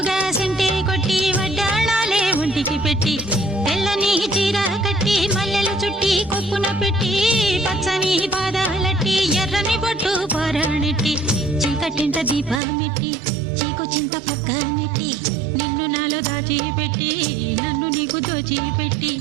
సెంటే కొట్టి వడ్డాణాలే ఒంటికి పెట్టి తెల్లని చీర కట్టి మల్లెలు చుట్టి కొప్పున పెట్టి పచ్చని పాదాలట్టి ఎర్రని బొట్టు పారాణెట్టి చీకటింట దీపమెట్టి చీకు చింత పక్క నెట్టి నిన్ను నాలో దాచిపెట్టి నన్ను నీకు దోచిపెట్టి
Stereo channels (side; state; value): left; drops out; at 12.6 s